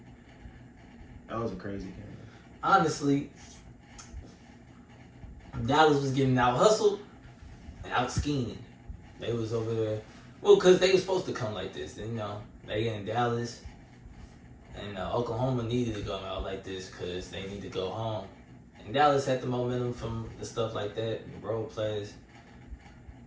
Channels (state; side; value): identical; both; correlation 1.00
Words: that was a crazy game. honestly, Dallas was getting out hustled and out schemed. They was over there. Well, because they was supposed to come like this. You know, they in Dallas. And Oklahoma needed to go out like this because they need to go home. And Dallas had the momentum from the stuff like that, the road plays.